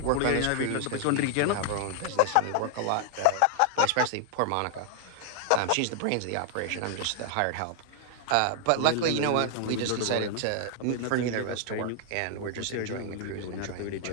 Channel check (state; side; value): different; both; correlation 0.00